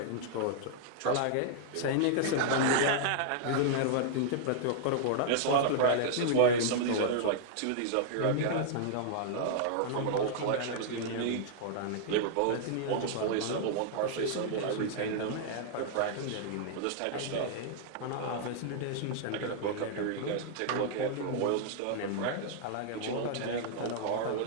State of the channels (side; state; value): both; different; correlation -0.01